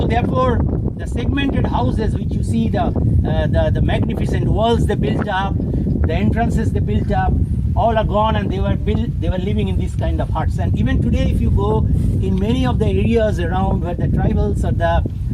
therefore, the segmented houses which you see, the magnificent walls they built up, the entrances they built up, all are gone, and they were living in these kind of huts. And even today, if you go in many of the areas around where the tribals or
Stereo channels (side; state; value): both; identical; correlation 1.00